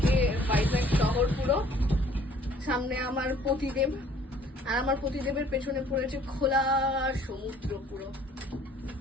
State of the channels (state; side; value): normal; both; correlation 0.57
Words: ভাইজাগ শহর পুরো। সামনে আমার পতিদেব, আর আমার পতিদেবের পেছনে পড়েছে খোলা সমুদ্র পুরো।